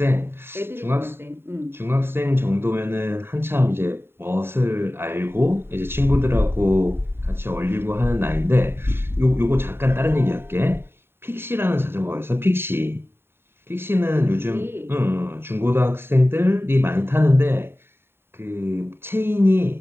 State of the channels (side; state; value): left; late; 0.11 ms